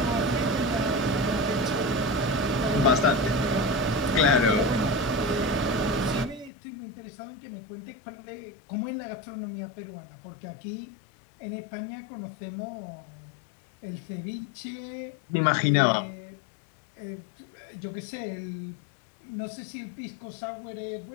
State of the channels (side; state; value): right; drops out; at 6.5 s